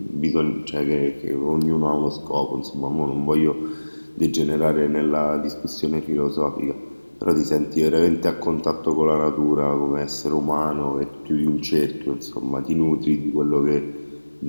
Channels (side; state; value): both; inverted; correlation -1.00